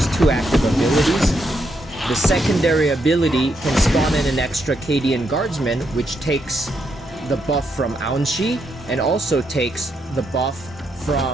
2 active abilities. The secondary ability can spawn in an extra Cadian Guardsman, which takes the buff from Aunshi and also takes the buff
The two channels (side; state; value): both; normal; correlation 0.79